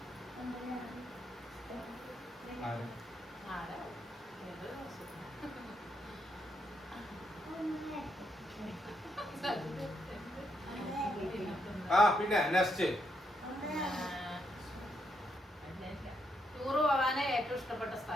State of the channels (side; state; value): both; normal; correlation 0.78